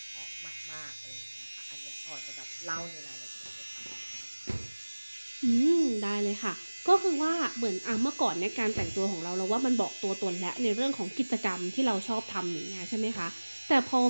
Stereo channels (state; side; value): inverted; both; correlation -1.00